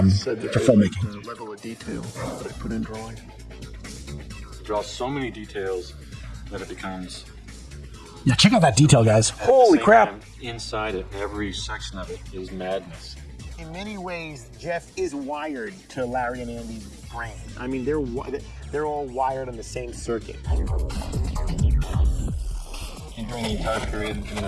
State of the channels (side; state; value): both; identical; correlation 1.00